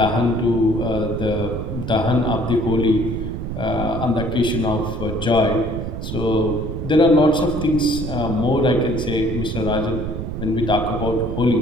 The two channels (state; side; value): noise; right; rumble, 6 dB below the sound